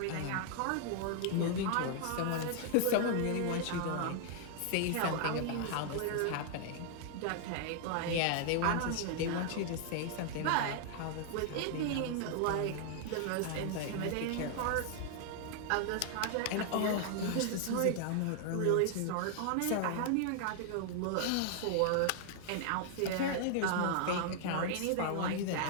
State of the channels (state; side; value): different; both; correlation 0.00